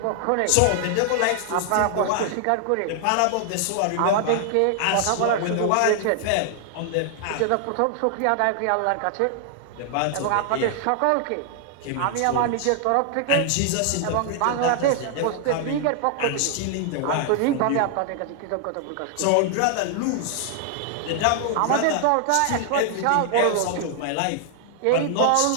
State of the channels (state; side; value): different; both; correlation 0.00